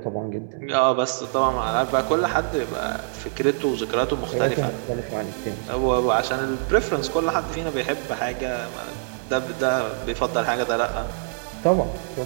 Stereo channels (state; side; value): silent; left; digital silence